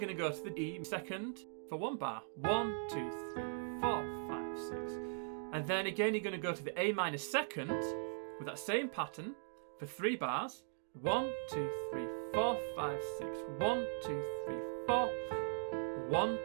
going to go to the E second for 1 bar. 1, 2, 3, 4, 5, 6. And then again you're going to go to the A minor second with that same pattern for 3 bars. 1, 2, 3, 4, 5, 6. 1, 2, 3, 4. 1,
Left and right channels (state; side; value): silent; left; digital silence